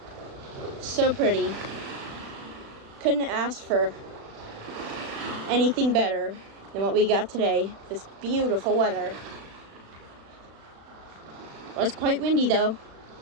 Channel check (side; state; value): left; late; 36 ms